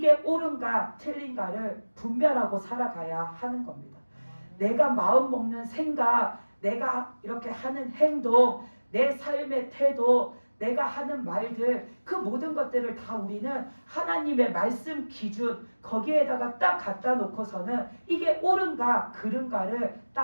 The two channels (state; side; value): inverted; both; correlation -1.00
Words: 옳은가 틀린가를 분별하고 살아가야 하는 겁니다. 내가 마음 먹는 생각, 내가 이렇게 하는 행동, 내 삶의 태도, 내가 하는 말들, 그 모든 것들을 다 우리는 하나님의 말씀 기준 거기에다가 딱 갖다 놓고서는 이게 옳은가 그른가를